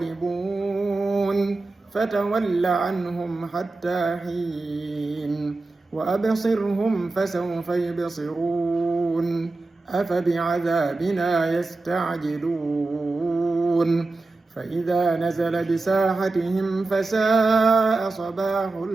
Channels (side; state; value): left; quieter; 3.4 dB